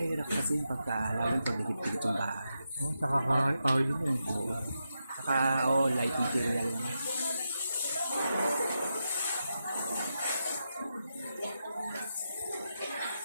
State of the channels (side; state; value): both; inverted; correlation -0.86